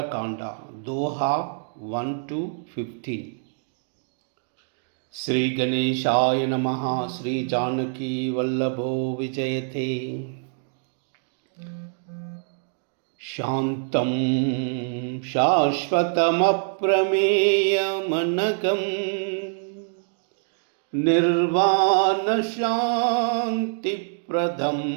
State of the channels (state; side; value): silent; left; digital silence